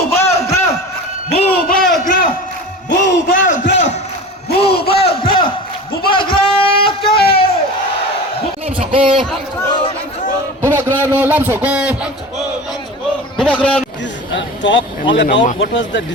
bubagra bubagra bubagra bubagra Lam Soko Bubagrano Lam Soko Bubagrano talk all about what was the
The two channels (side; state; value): both; normal; correlation 0.33